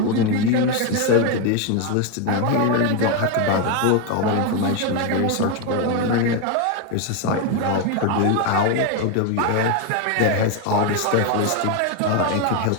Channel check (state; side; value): different; both; correlation 0.02